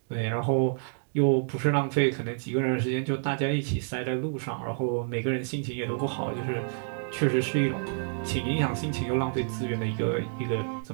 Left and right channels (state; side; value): silent; left; digital silence